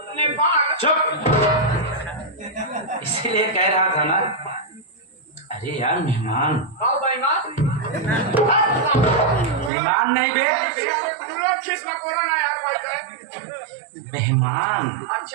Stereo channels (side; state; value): left; drops out; at 9.7 s